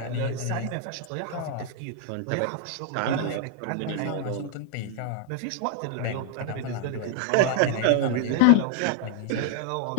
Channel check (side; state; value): both; different; correlation 0.00